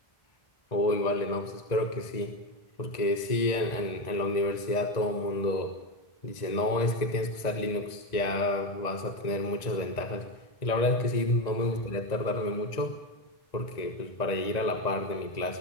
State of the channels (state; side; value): late; right; 1.9 ms